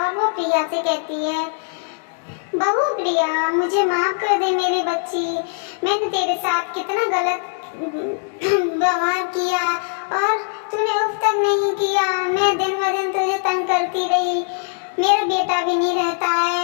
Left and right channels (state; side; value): silent; right; 65 dB below the other